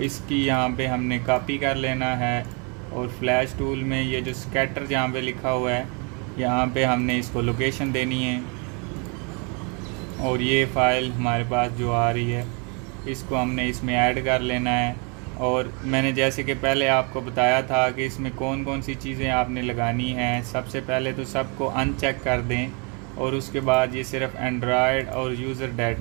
इसकी यहाँ पे हमने कॉपी कर लेना है और फ्लैश टूल में ये जो स्कैटर जहाँ पे लिखा हुआ है यहाँ पे हमने इसको लोकेशन देनी है। और ये फ़ाइल हमारे पास जो आ रही है इसको हमने इसमें ऐड कर लेना है। और मैंने जैसे कि पहले आपको बताया था कि इसमें कौन कौन सी चीज़ें आपने लगानी हैं। सबसे पहले तो सबको अनचेक कर दें और उसके बाद ये सिर्फ एंड्रॉयड और यूज़र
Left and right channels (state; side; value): quieter; left; 34.0 dB